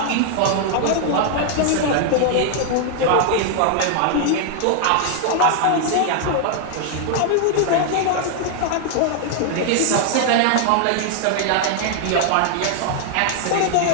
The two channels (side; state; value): both; different; correlation 0.00